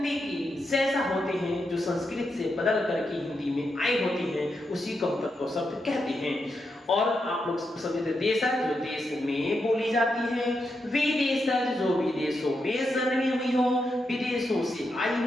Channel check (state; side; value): normal; both; correlation 0.85